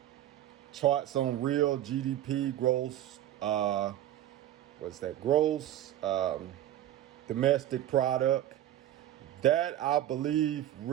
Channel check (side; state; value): left; quieter; 12.4 dB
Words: on real GDP, gross, gross domestic product. That, I believe,